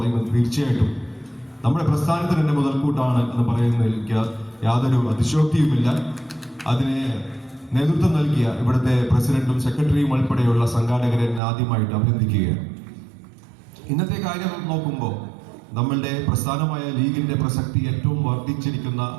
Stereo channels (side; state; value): left; drops out; at 11.4 s